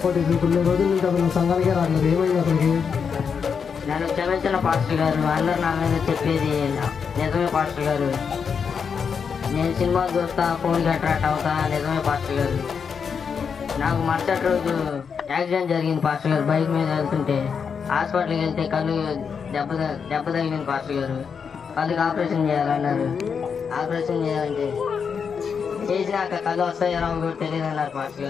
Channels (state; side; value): quieter; right; 6.4 dB